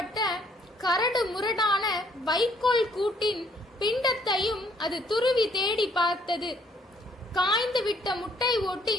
கரடு முரடான வைக்கோல் கூட்டின் பிண்டத்தையும் அது துருவி தேடி பார்த்தது. காய்ந்து விட்ட முட்டை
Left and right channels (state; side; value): normal; both; correlation 0.66